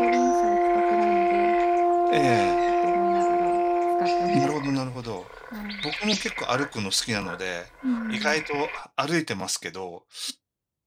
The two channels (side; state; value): both; identical; correlation 1.00